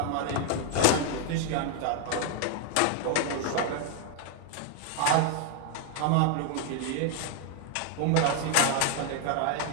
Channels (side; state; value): both; different; correlation 0.00